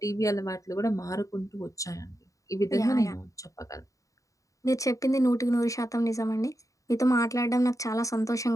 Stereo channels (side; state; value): right; late; 0.16 ms